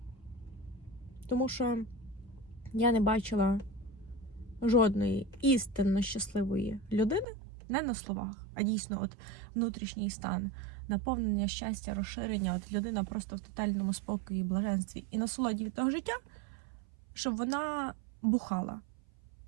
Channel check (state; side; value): drops out; left; at 7.2 s